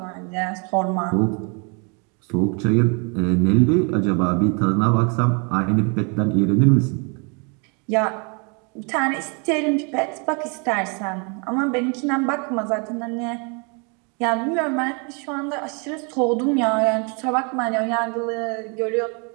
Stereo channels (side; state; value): left; quieter; 34.6 dB